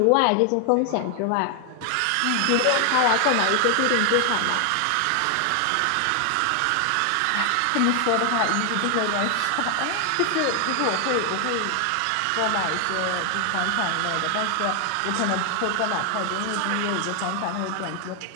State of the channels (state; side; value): different; both; correlation 0.00